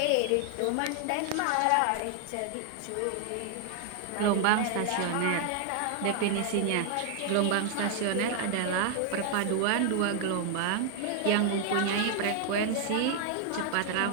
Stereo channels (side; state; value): both; different; correlation 0.00